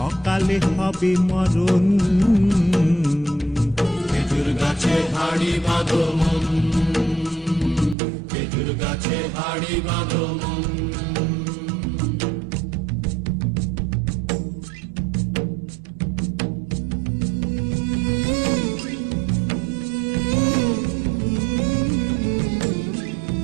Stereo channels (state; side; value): drops out; left; at 8.0 s